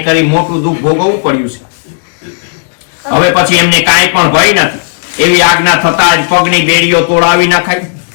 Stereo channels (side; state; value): right; silent; digital silence